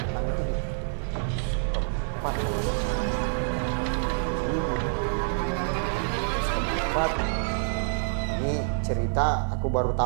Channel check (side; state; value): left; silent; digital silence